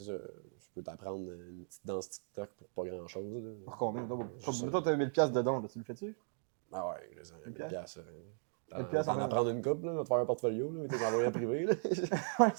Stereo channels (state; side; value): silent; left; digital silence